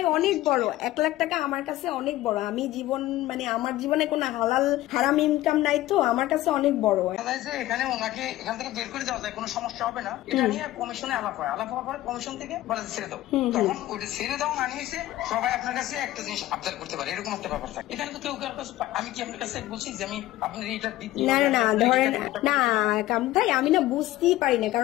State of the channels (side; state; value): right; quieter; 15.7 dB